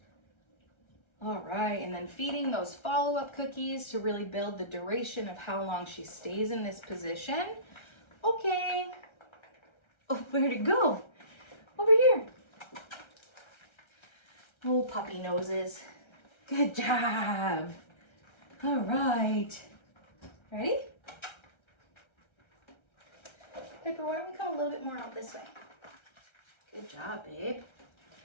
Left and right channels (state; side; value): late; right; 1.3 ms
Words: All right, and then feeding those follow-up cookies to really build the duration of how long she stays in this position. Okay. Oh, where'd it go? Over Oh, puppy noses. Good job. All right. Ready? Piper, why don't we come a little bit more out this way? Good job, babe.